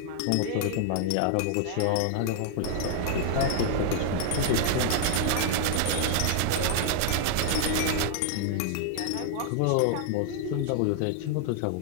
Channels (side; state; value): both; different; correlation 0.00